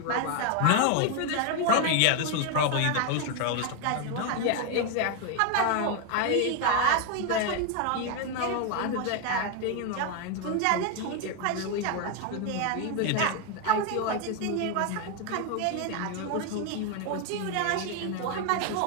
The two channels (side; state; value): both; different; correlation 0.01